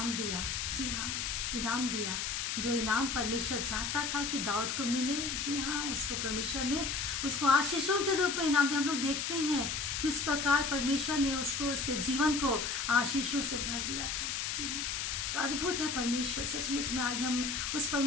दिया। जी हाँ, इनाम दिया, जो इनाम परमेश्वर चाहता था कि दाऊद को मिले। जी हाँ, उसको परमेश्वर ने उसको आशीषों के रूप में इनाम दिया। हम लोग देखते हैं किस प्रकार परमेश्वर ने उसको, उसके जीवन को आशीषों से भर दिया था। जी हाँ, तो अद्भुत है परमेश्वर। सचमुच में आज हम उस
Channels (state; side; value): noise; left; hiss, 1 dB below the sound